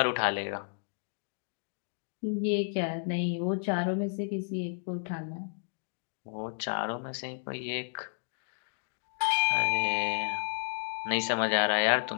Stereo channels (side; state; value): right; silent; digital silence